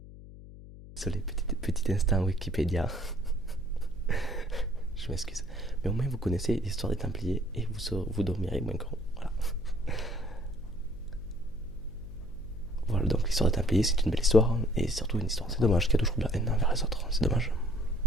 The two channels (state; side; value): noise; left; hum, 16 dB below the sound